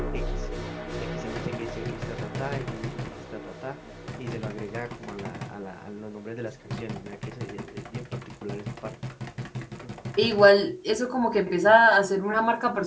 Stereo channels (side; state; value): both; identical; correlation 1.00